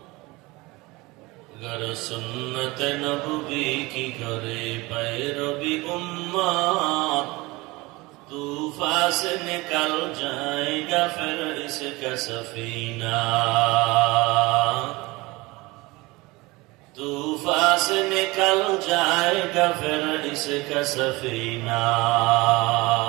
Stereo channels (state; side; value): quieter; left; 22.7 dB